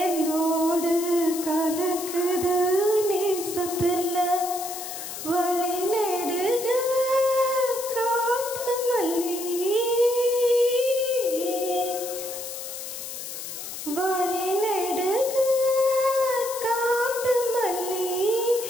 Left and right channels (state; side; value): noise; left; hiss, 8 dB below the sound